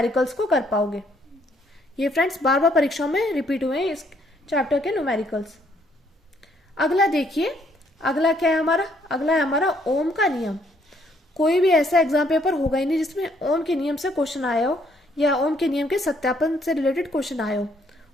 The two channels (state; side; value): normal; both; correlation 0.68